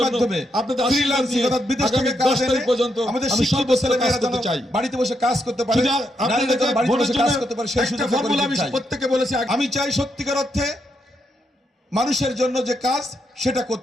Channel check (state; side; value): normal; both; correlation 0.80